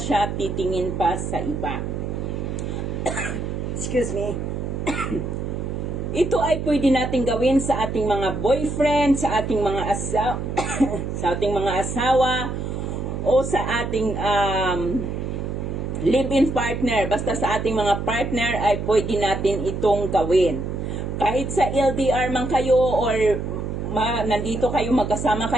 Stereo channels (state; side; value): noise; right; hum, 4 dB below the sound